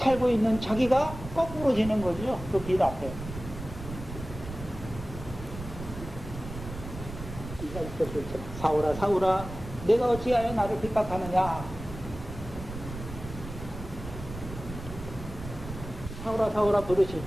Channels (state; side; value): noise; right; rumble, 11 dB below the sound